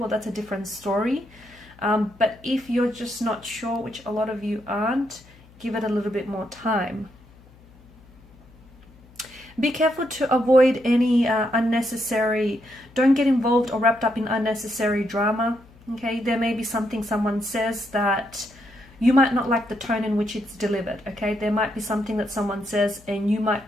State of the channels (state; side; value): noise; left; hum, 25 dB below the sound